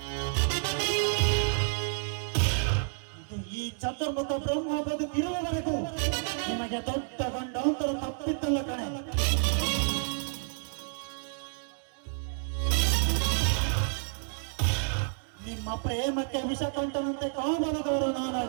ಇದು ಈ ಚತುರ್ಮುಖ ಬ್ರಹ್ಮ ಬದುಕಿರುವವರೆಗೂ ನಿಮಗೆ ದೊಡ್ಡ ಗಂಡಾಂತರ ತಪ್ಪಿದ್ದಲ್ಲ ಕಣೆ. ನಿಮ್ಮ ಪ್ರೇಮಕ್ಕೆ ವಿಷಕಂಠನಂತೆ ಕಾಮನದವರು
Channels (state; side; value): silent; left; digital silence